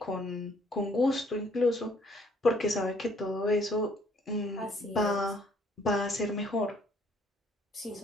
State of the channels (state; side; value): normal; both; correlation 0.63